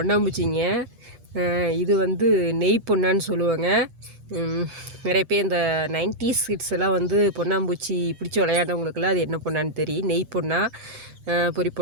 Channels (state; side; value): late; left; 8.4 ms